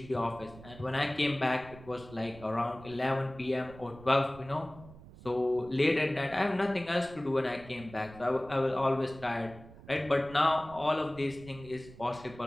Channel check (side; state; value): right; noise; rumble, 19 dB below the sound